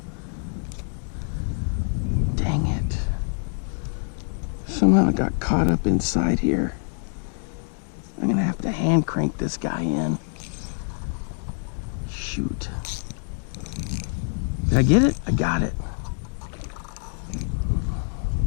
Dang it. Somehow I got caught up inside here. I'm gonna have to hand crank this guy in. Shoot. Did I get it? I got it.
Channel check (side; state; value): right; silent; 60 dB below the other